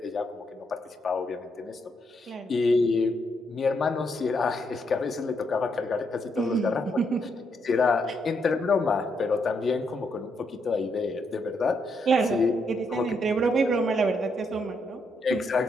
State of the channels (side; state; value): both; normal; correlation 0.77